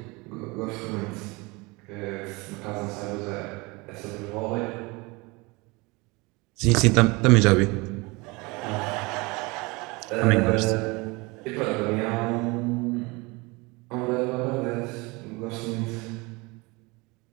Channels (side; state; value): left; quieter; 25.5 dB